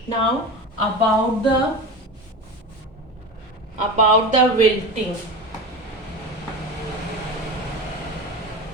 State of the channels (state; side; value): normal; both; correlation 0.27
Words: Now about the wilting.